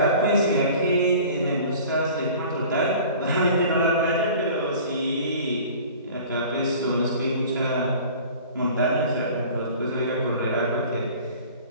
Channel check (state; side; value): inverted; both; correlation -0.44